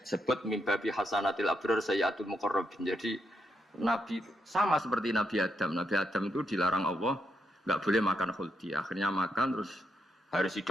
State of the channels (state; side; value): normal; both; correlation 0.80